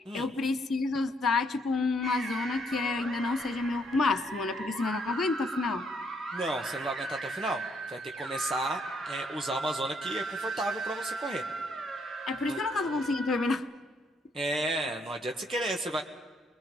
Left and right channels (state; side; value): normal; both; correlation 0.71